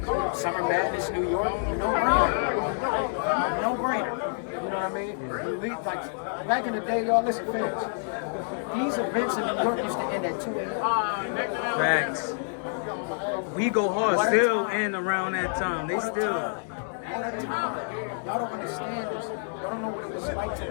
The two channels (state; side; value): silent; right; digital silence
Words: Summer Madness, New York, no brainer. No brainer. You know what I mean? We, like, back in the day, y'all listen, fans. These events in New York used to end at 2 a.m. Facts. We go hard still and around that time. They still. One at a time. Y'all don't understand this. Y'all don't know what it was like to